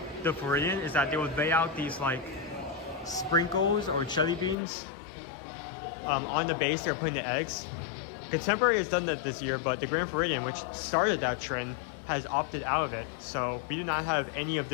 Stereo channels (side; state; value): right; drops out; at 4.5 s